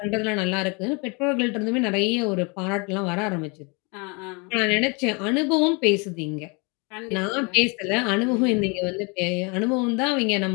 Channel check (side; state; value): right; quieter; 30.8 dB